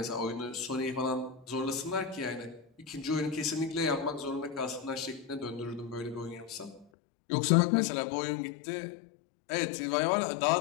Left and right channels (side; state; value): right; drops out; at 6.9 s